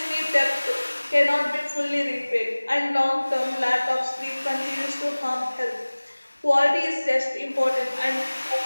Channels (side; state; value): both; inverted; correlation -1.00